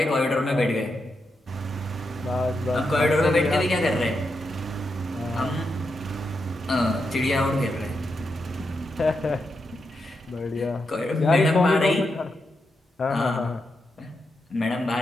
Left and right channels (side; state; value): both; normal; correlation 0.85